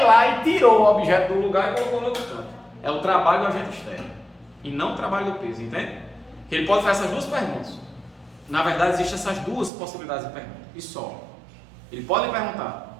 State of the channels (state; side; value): drops out; left; at 9.7 s